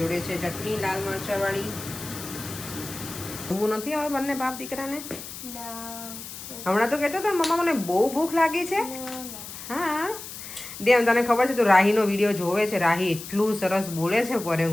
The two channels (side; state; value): left; noise; hiss, 11 dB below the sound